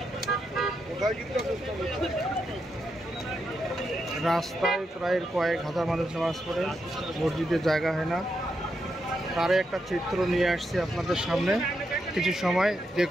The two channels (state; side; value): normal; both; correlation 0.83